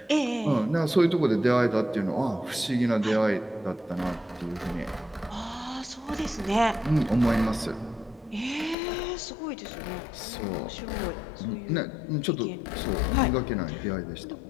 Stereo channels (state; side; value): drops out; right; at 8.8 s